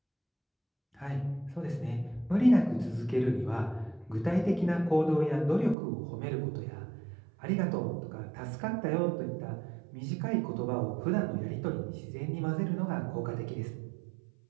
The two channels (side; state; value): left; drops out; at 5.8 s